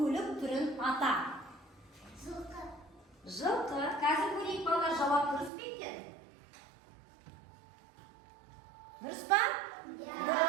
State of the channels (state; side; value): drops out; left; at 5.5 s